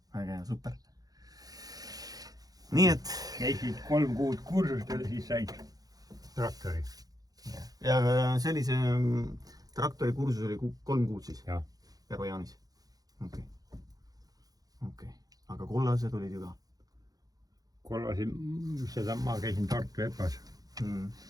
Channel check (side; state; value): left; late; 0.18 ms